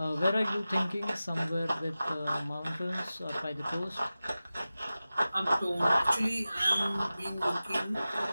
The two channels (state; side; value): inverted; both; correlation -0.95